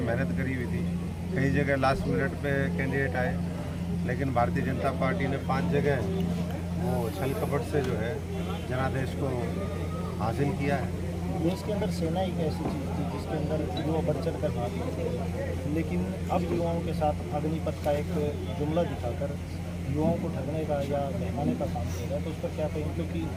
मेहनत करी हुई थी, कई जगह लास्ट मिनट पे कैंडिडेट आए, लेकिन भारतीय जनता पार्टी ने 5 जगह वो छल कपट से जो है जनादेश को हासिल किया है। देश के अंदर सेना एक ऐसी चीज़ थी जिसके अंदर युवा बढ़ चढ़ कर भाग लेते थे, लेकिन अब युवाओं के साथ अग्निपथ का एक जुमला दिखाकर युवाओं को ठगने का या बहकाने का काम किया है, तो उस पर क्या कहें? क्योंकि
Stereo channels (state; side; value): identical; both; correlation 1.00